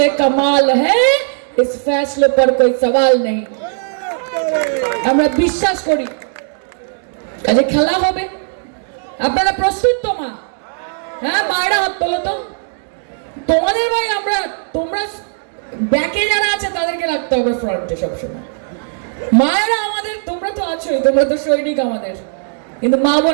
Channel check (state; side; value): silent; left; digital silence